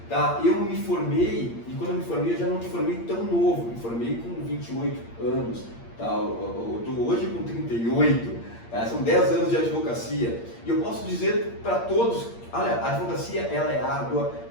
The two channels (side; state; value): right; late; 8.6 ms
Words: Tá? Eu me formei, e quando eu me formei, eu já não me formei tão novo, me formei com 28 anos. Tá? Eu estou hoje com 38, tá? São 10 anos de advocacia. E eu posso dizer para todos, olha, a advocacia ela é árdua,